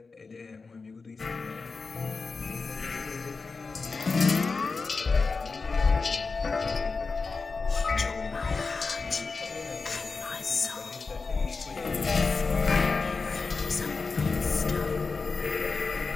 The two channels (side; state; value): right; quieter; 4.3 dB